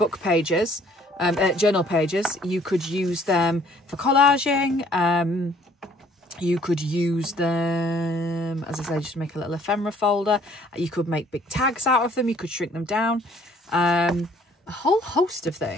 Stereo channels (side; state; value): both; normal; correlation 0.60